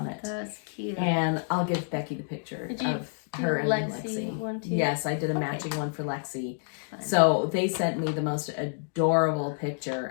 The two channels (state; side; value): silent; right; digital silence